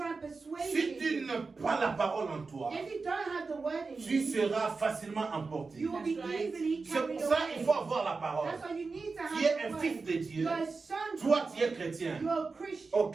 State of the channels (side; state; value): left; quieter; 4.3 dB